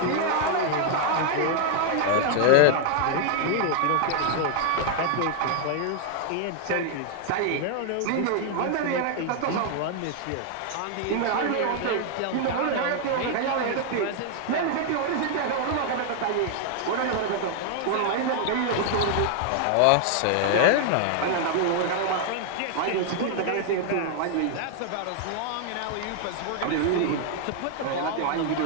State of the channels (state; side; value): different; both; correlation 0.00